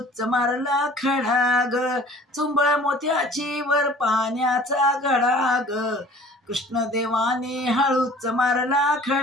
मारला खडा ग। चुंबळ मोत्याची वर पाण्याचा घडा ग, कृष्णदेवाने हळूच मारला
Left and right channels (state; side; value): normal; both; correlation 0.48